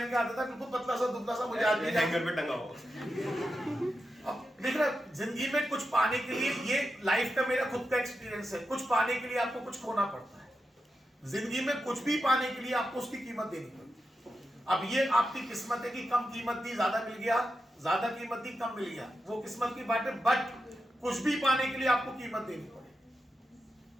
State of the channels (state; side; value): normal; both; correlation 0.89